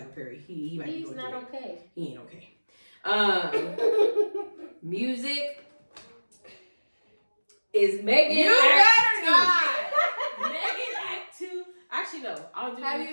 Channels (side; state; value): both; inverted; correlation -1.00